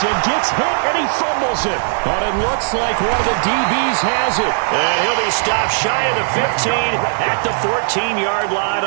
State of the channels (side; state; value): left; silent; 68 dB below the other